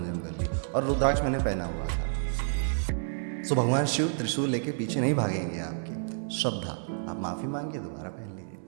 कर लिया और रुद्राक्ष मैंने पहना हुआ था, सो भगवान शिव त्रिशूल लेके पीछे नहीं भागेंगे आपकी। श्रद्धा, आप माफ़ी मांगिए, दोबारा पहन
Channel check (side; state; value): left; silent; 58 dB below the other